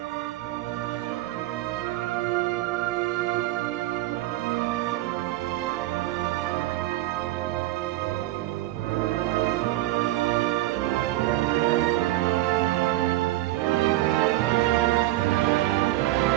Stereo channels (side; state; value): left; quieter; 16.7 dB